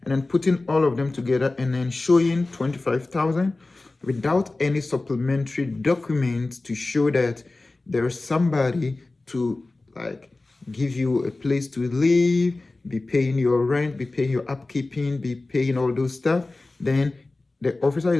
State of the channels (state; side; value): quieter; right; 3.2 dB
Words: and then putting all of them together and then showing 25,000 without any supplementary documents to show that there is somebody to like give you a place to live, be paying your rent, be paying your upkeeping, be paying all those stuff, then the officer